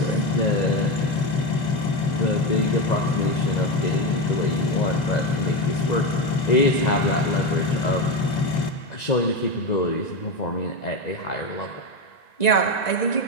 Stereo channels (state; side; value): late; right; 1.9 ms